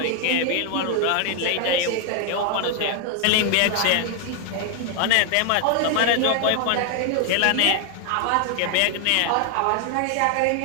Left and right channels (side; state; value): both; different; correlation 0.00